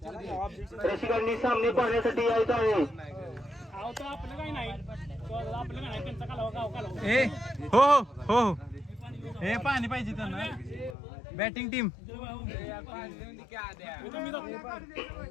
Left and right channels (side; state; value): right; drops out; at 11.0 s